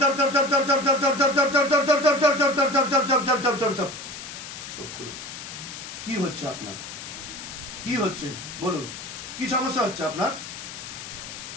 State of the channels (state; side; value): noise; left; hiss, 11 dB below the sound